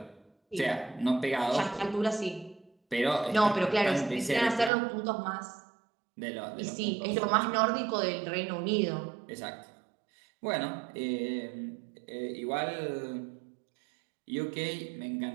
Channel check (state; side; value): drops out; left; at 4.7 s